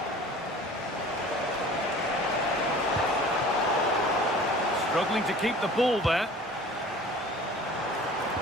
Struggling to keep the ball there.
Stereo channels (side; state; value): both; normal; correlation 0.45